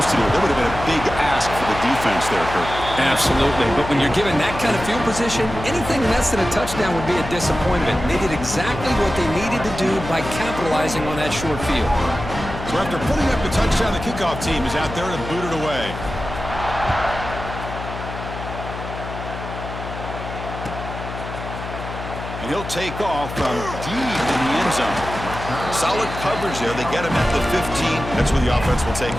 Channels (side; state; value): left; noise; hum, 9 dB below the sound